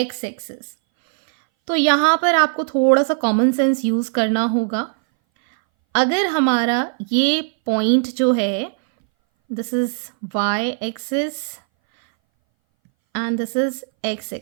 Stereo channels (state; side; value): silent; left; 62 dB below the other